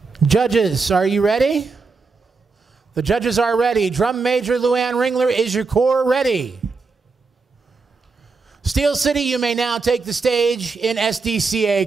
Judges, are you ready? The judges are ready. Drum Major Luann Ringler, is your corps ready? Steel City, you may now take the stage in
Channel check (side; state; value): left; quieter; 4.4 dB